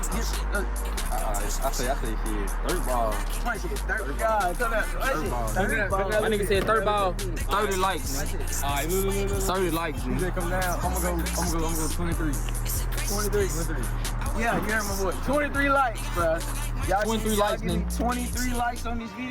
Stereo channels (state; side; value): identical; both; correlation 1.00